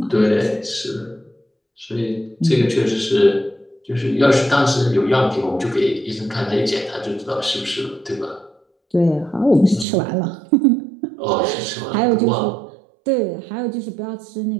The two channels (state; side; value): drops out; left; at 9.9 s